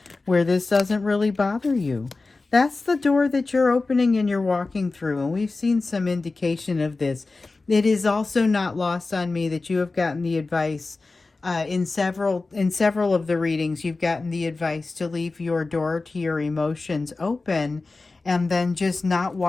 where this doesn't really bother you? That's the door that you're opening and you're walking through. And we've seen some indication of this. It is also not lost on me that you have gotten the advice in several of the readings. You've gotten the advice to leave your door to your emotions open and then just not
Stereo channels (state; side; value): quieter; right; 3.6 dB